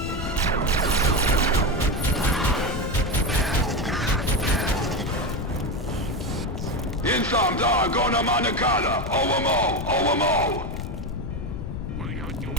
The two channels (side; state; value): left; noise; rumble, 6 dB below the sound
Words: Insam da gona manakala. Overmo.